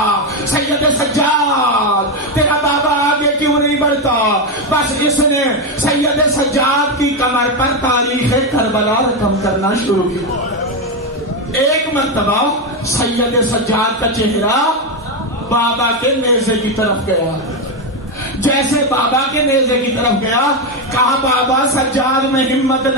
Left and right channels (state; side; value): normal; both; correlation 0.09